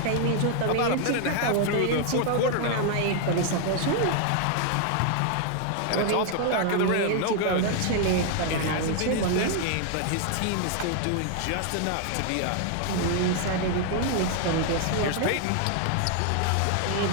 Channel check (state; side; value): different; both; correlation 0.00